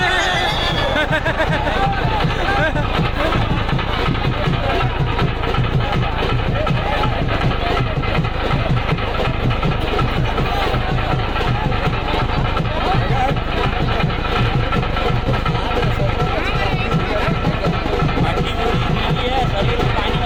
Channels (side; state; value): both; identical; correlation 1.00